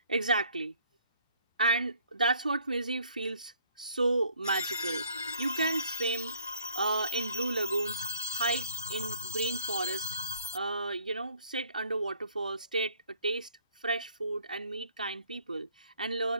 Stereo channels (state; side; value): inverted; both; correlation -0.60